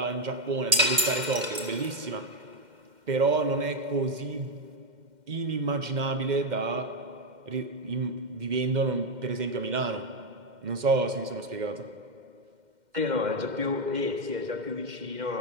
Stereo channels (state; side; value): late; left; 2.1 ms